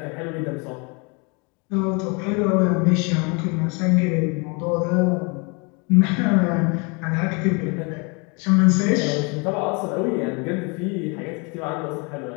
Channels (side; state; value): right; quieter; 31.2 dB